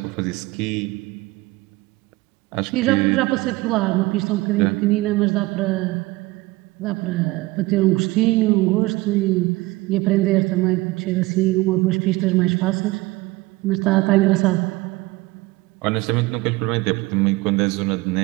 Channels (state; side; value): quieter; left; 21.1 dB